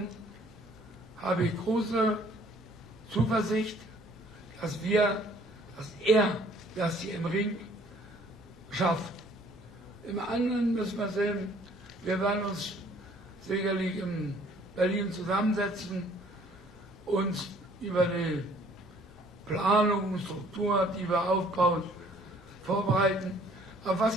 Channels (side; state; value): right; noise; rumble, 28 dB below the sound